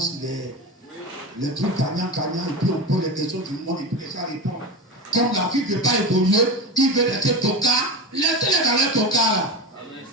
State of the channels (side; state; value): both; normal; correlation 0.22